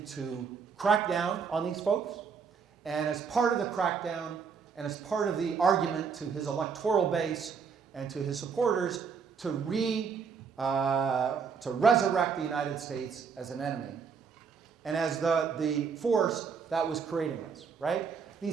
to crack down on these folks. And as part of the crackdown, and as part of the argument to his electoral base and to his supporters, to resurrect the United States as an enemy. And as the force that was creating this, right?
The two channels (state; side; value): quieter; left; 6.0 dB